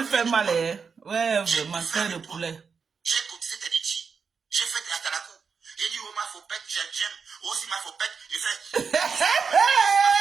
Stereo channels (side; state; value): left; quieter; 5.7 dB